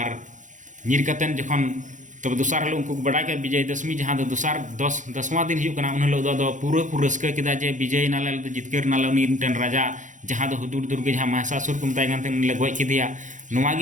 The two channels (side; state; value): left; late; 0.36 ms